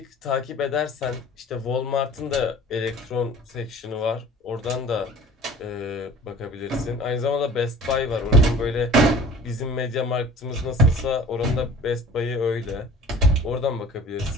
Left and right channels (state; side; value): normal; both; correlation 0.45